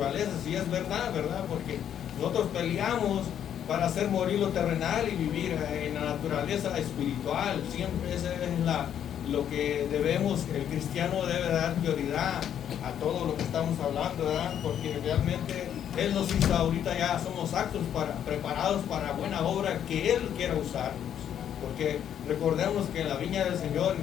y es verdad, porque nosotros peleamos para hacer morir lo terrenal y vivir en la naturaleza espiritual. Siempre eso es lo que debemos, el cristiano debe dar prioridad a todo lo que estamos hablando, ¿verdad? Porque realmente Él nos hizo, ahorita ya somos aptos, preparados para buena obra que Él quiera usarnos. Porque recordemos que en la viña del Señor,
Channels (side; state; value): right; quieter; 9.6 dB